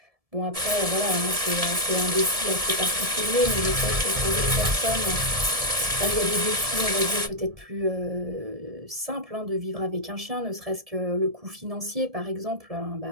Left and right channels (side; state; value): left; late; 1.7 ms